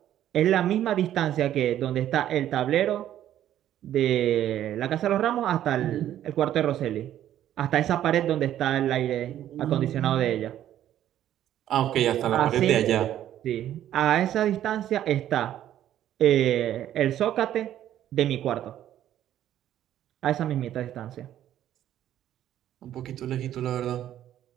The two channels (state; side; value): quieter; left; 11.7 dB